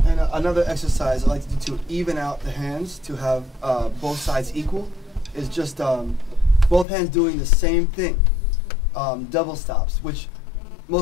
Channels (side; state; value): right; drops out; at 6.9 s